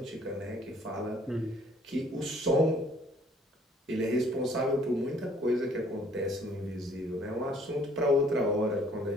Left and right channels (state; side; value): normal; both; correlation 0.59